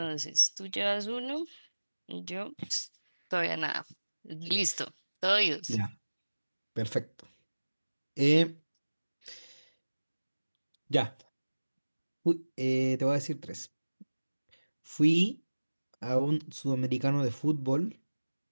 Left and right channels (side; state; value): both; inverted; correlation -1.00